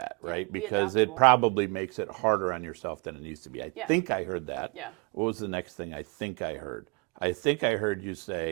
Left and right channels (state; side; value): quieter; left; 31.4 dB